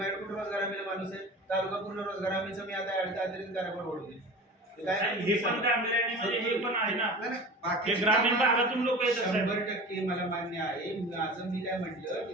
कुठं रोजगार हमीला माणूस आहे. तालुका पूर्ण रोजगार हमीचं मी आता अतिरिक्त कार्यभार ओढवले. हे पण गांभीर्याने म्हणजे हे पण आहे ना. नाही, नाही, हे बाकीची ग्रामीण कामं- भागातून लोक येतात साहेब. 100% मला मान्य आहे. माझं मी काय म्हटलं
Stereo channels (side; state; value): both; normal; correlation 0.36